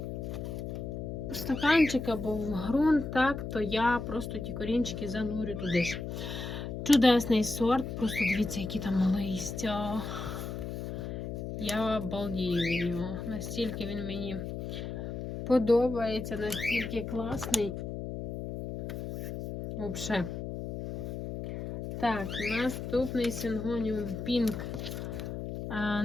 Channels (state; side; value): noise; left; hum, 6 dB below the sound